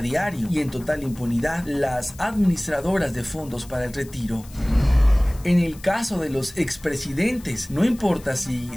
y en total impunidad las administradoras de fondos para el retiro. En el caso de los expresidentes, no importa si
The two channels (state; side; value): noise; left; hiss, 22 dB below the sound